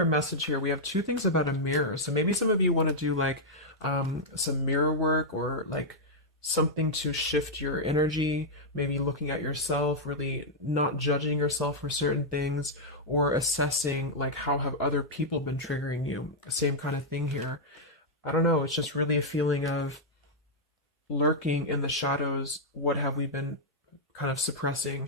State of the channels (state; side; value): normal; both; correlation -0.05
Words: message here. We have two things about a mirror. So maybe some of you want to do like some mirror work, or like something to shift your energy, maybe looking at yourself, really not judging yourself for certain things, or assessing like how have other people been triggering you. Same kind of thing here. I don't know, it's just really a feeling of lurking in the shadows. What have we been kind of